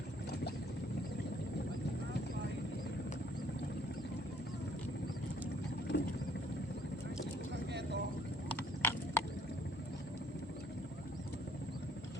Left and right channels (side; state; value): both; normal; correlation 0.63